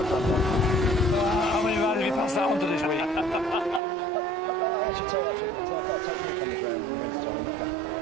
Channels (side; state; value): left; drops out; at 3.8 s